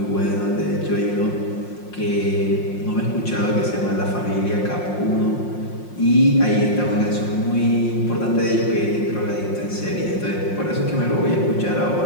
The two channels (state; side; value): late; right; 5.6 ms